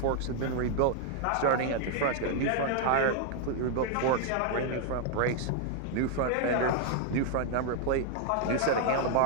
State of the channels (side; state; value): both; different; correlation 0.00